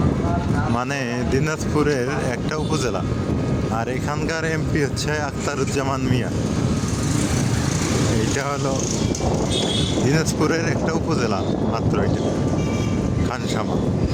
মানে দিনাজপুরের একটা উপজেলা, আর এখানকার এমপি হচ্ছে আখতারুজ্জামান মিয়া। এটা হলো দিনাজপুরের একটা উপজেলা মাত্র, এটা খানসামা।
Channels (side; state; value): both; identical; correlation 1.00